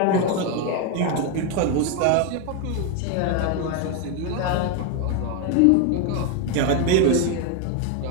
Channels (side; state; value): both; different; correlation 0.01